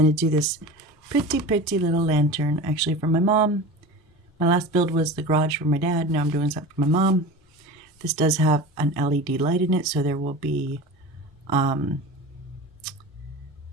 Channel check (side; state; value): both; normal; correlation 0.32